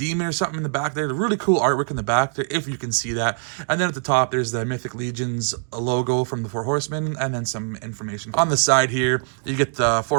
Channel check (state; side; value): silent; left; digital silence